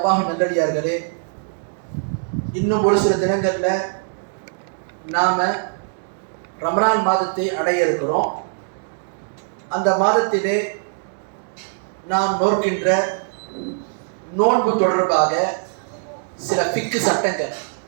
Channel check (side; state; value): left; silent; digital silence